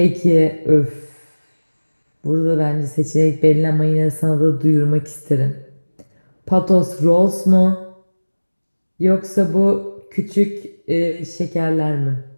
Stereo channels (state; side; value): inverted; both; correlation -1.00